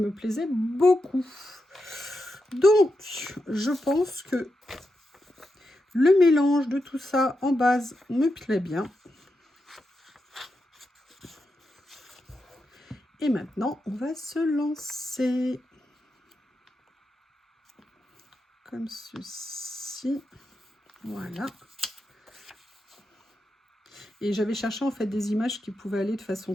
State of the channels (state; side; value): normal; both; correlation 0.87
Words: plaisait beaucoup. Donc, je pense que le mélange de tout ça en base me plaît bien. Et maintenant, on va se lancer. Comme ceci. Voilà. Et j'avais cherché en fait des images qui pouvaient aller de